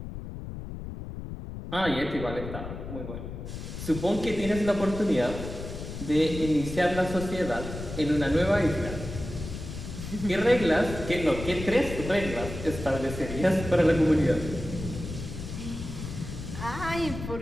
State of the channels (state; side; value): noise; left; rumble, 8 dB below the sound